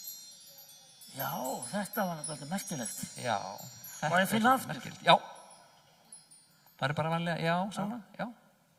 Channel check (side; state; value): both; identical; correlation 1.00